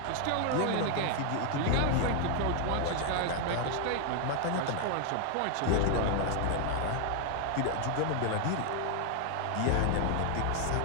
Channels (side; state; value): both; different; correlation 0.00